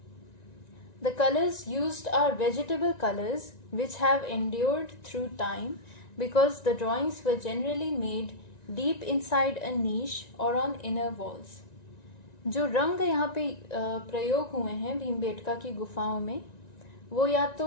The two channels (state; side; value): late; right; 1.9 ms